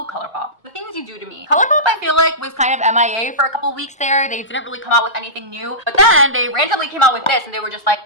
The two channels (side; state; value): both; normal; correlation -0.19